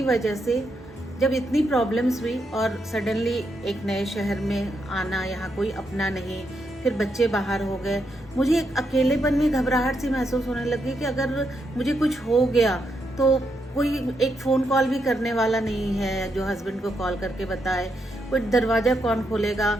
वजह से जब इतनी प्रॉब्लम्स हुई और सडनली एक नए शहर में आना, यहाँ कोई अपना नहीं, फिर बच्चे बाहर हो गए, मुझे एक अकेलेपन में घबराहट सी महसूस होने लगी कि अगर मुझे कुछ हो गया तो कोई एक फ़ोन कॉल भी करने वाला नहीं है जो हस्बैंड को कॉल करके बताए, कोई दरवाज़ा कौन खोलेगा।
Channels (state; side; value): normal; both; correlation 0.81